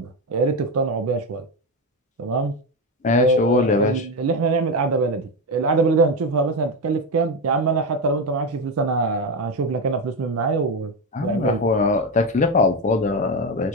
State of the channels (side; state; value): both; normal; correlation 0.13